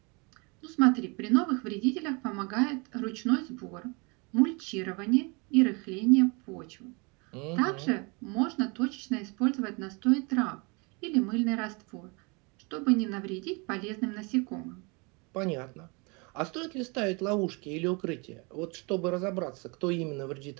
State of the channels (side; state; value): left; quieter; 30.0 dB